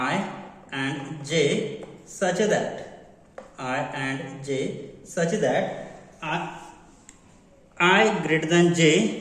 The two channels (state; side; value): identical; both; correlation 1.00